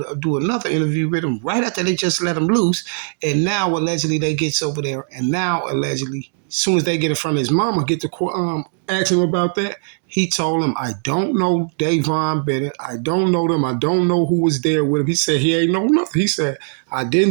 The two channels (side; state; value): left; silent; digital silence